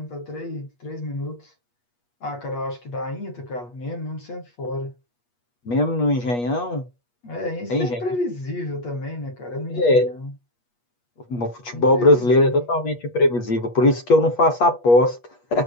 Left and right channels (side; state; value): right; late; 8.4 ms